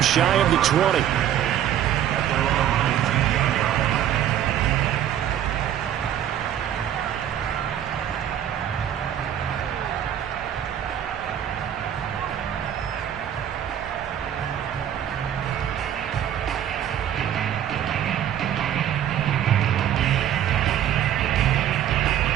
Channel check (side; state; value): left; quieter; 10.5 dB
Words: shy of the 20.